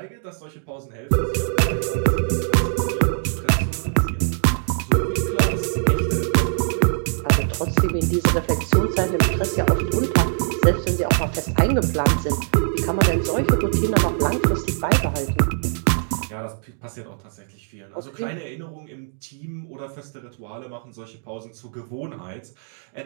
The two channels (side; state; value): left; silent; digital silence